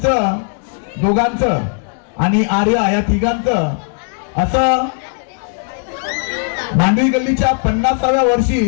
दोघांचं आणि आर्या या तिघांचं असं मांडवी गल्लीच्या 50व्या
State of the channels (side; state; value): right; silent; 56 dB below the other